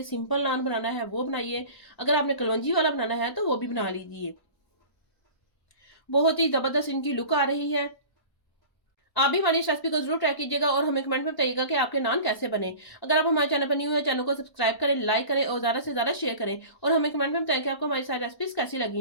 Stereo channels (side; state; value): right; late; 1.1 ms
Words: सिंपल नान बनाना है वो बनाइए, अगर आपने कलवंजी वाला बनाना है तो वो भी बना लीजिए। बहुत ही ज़बरदस्त इनकी लुक आ रही है। आप भी हमारी इस रेसिपी को जरूर ट्राई कीजिएगा और हमें कमेंट में बताइएगा कि आपके नान कैसे बने। अगर आप हमारे चैनल पर न्यू है, चैनल को सब्सक्राइब करें, लाइक करें और ज़्यादा से ज़्यादा शेयर करें और हमें कमेंट में बताएं कि आपको हमारी सारी रेसिपीज कैसी